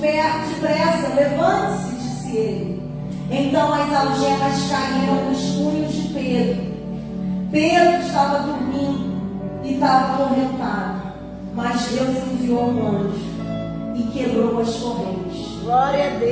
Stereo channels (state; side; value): identical; both; correlation 1.00